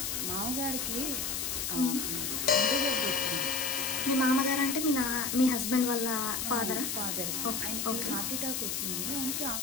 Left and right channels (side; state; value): left; noise; hiss, 1 dB below the sound